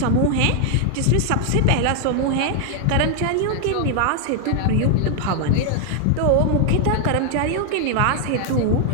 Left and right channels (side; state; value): both; different; correlation 0.00